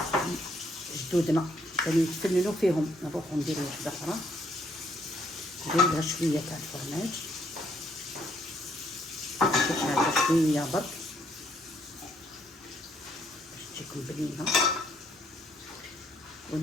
جدودنا كانوا يتفننوا فيهم. نروحو نديرو واحده اخرى، ندير لها شويه تاع الفرماج، هذا شويه برك باش تجيكم بنينه.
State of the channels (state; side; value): normal; both; correlation 0.70